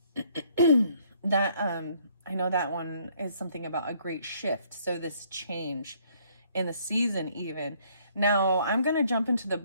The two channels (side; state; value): both; inverted; correlation -0.64